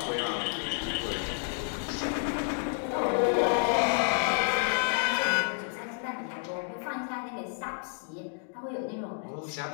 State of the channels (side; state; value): right; silent; 58 dB below the other